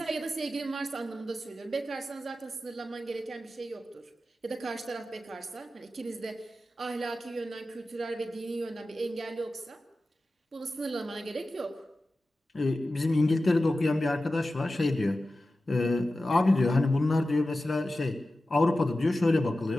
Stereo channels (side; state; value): both; normal; correlation 0.94